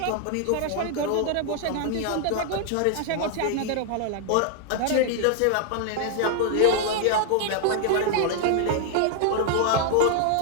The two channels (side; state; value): both; different; correlation 0.00